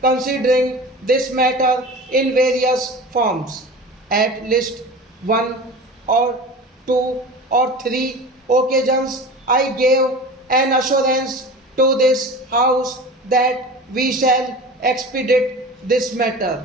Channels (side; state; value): both; normal; correlation 0.35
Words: considering this matter in various forms. At least one or two or three occasions, I gave an assurance to this House that we shall expedite this matter,